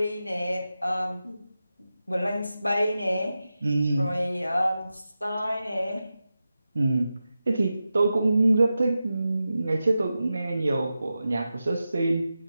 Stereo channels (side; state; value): both; inverted; correlation -0.92